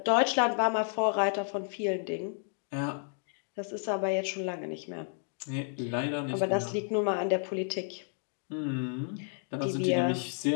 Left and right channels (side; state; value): right; silent; 57 dB below the other